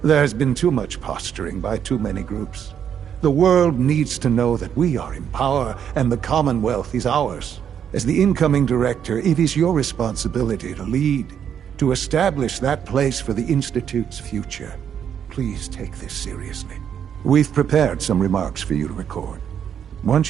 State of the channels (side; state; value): left; quieter; 8.5 dB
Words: There's been too much posturing by too many groups. The world needs to know that we are in power and the Commonwealth is ours. As the incoming director, it is your responsibility to lead, to establish that place for the Institute's future. Please take this seriously. We've prepared some remarks for you to record.